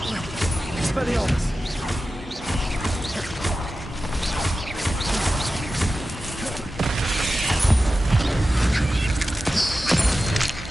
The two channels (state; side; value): normal; both; correlation 0.93